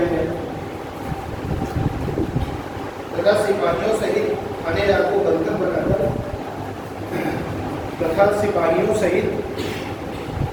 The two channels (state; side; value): identical; both; correlation 1.00